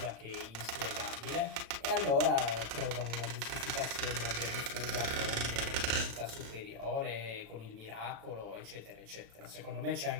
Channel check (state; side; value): late; left; 36 ms